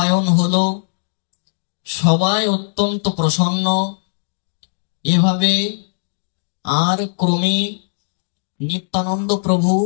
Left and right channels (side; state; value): right; silent; digital silence